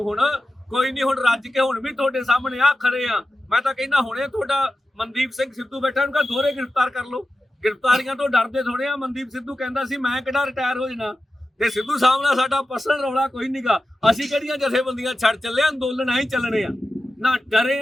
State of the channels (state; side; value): normal; both; correlation 0.93